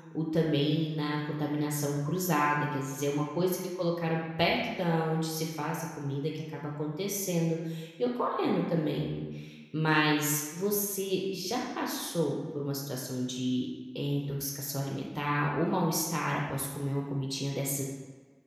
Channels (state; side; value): identical; both; correlation 1.00